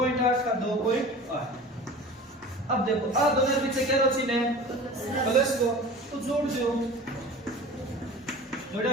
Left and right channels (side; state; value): both; normal; correlation 0.39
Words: का 2.8। अब देखो आ दोनों पीछे क्या रोची ने प्लस को तो जोड़ दो जोड़ा